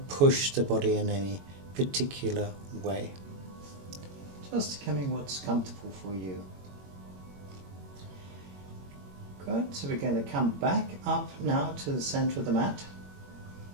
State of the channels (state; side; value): late; left; 21 ms